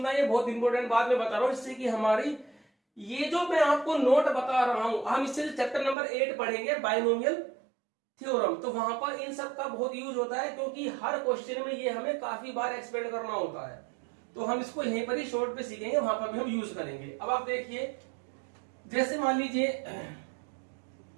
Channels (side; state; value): left; drops out; at 6.0 s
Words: ये बहुत इंपॉर्टेंट बात मैं बता रहा हूं, इससे कि हमारी ये जो मैं आपको नोट बता रहा हूं, हम इससे चैप्टर नंबर 8 पढ़ेंगे बाइनोमियल थ्योरम, तो वहां पर इन सब का बहुत यूज होता है, क्योंकि हर क्वेश्चन में ये हमें काफी बार एक्सपेंड करना होता है। तो हम इसको यहीं पर ही शॉर्ट पे सीखेंगे, वहां पर भी हम यूज करेंगे। अब आप देखिए, जैसे मान लीजिए